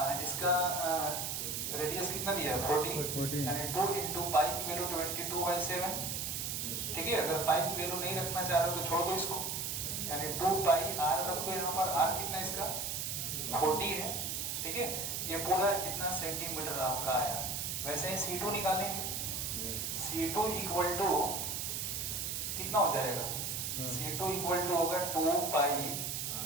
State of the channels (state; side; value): noise; right; hiss, 2 dB below the sound